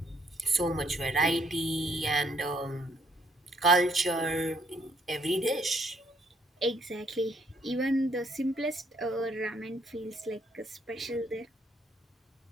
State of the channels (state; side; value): normal; both; correlation 0.68